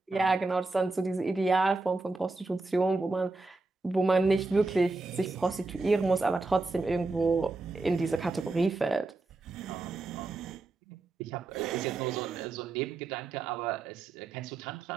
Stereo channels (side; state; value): left; quieter; 3.5 dB